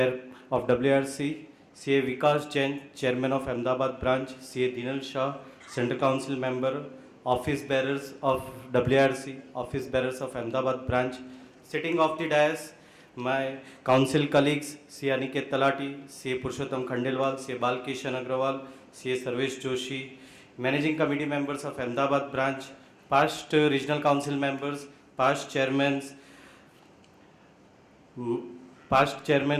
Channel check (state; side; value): identical; both; correlation 1.00